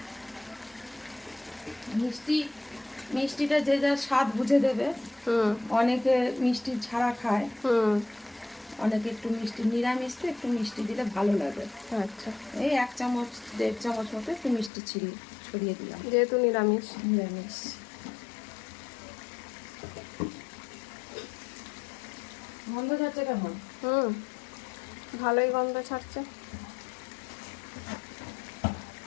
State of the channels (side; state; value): right; drops out; at 14.7 s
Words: মিষ্টিটা যে যার স্বাদ বুঝে দেবে। হুম অনেকে মিষ্টি ছাড়া খায়, হুম। অনেকে একটু মিষ্টি, নিরামিষতে একটু মিষ্টি দিলে ভালো লাগে। আচ্ছা, এই 1 চামচ 1.5 চামচ মতো একটু মিষ্টি ছড়িয়ে দিলাম, যেহেতু নিরামিষ। নিরামিষ। গন্ধ যাচ্ছে কেমন? হুম, ভালোই গন্ধ ছাড়ছে।